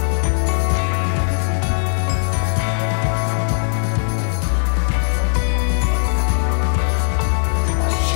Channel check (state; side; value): silent; right; digital silence